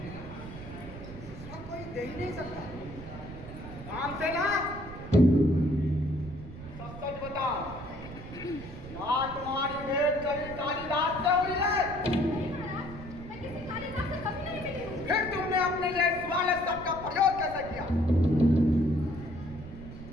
दूसरा कोई दे ही नहीं सकता। काम से ना सच सच बताओ, क्या तुम्हारी भेंट कभी कालिदास से हुई है? नहीं महाराज, मैं किसी कालिदास से कभी नहीं मिली हूँ। फिर तुमने अपने लिए सवाल शब्द का प्रयोग कैसे किया?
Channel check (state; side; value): noise; right; rumble, 13 dB below the sound